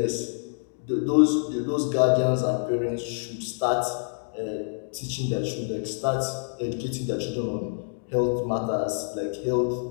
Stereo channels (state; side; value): silent; right; digital silence